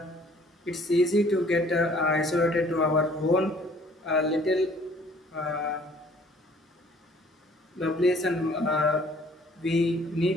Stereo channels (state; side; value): normal; both; correlation 0.57